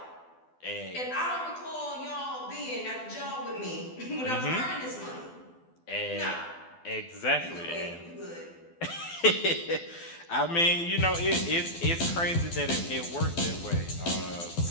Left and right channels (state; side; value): late; right; 12 ms